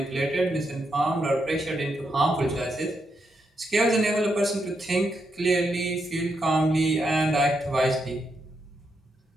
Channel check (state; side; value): normal; both; correlation 0.81